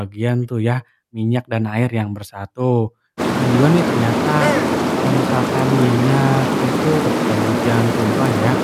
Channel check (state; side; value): identical; both; correlation 1.00